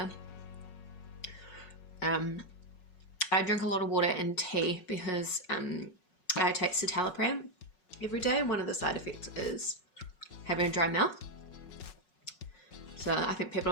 I drink a lot of water and tea because I take citalopram every day, and one of the side effects is having a dry mouth. So I think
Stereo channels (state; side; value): late; right; 5.4 ms